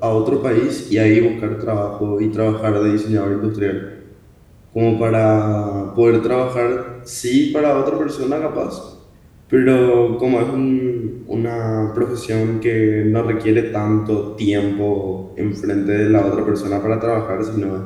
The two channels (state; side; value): identical; both; correlation 1.00